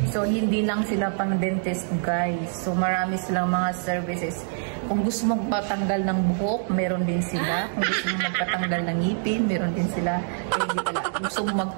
So, hindi lang sila pang dentist, guys. So, marami silang mga services. Kung gusto mong patanggal ng buhok, meron din sila. Kung gusto mong magpatanggal ng ngipin, meron din sila. Hindi pala. Kung gusto mong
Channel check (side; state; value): left; silent; 62 dB below the other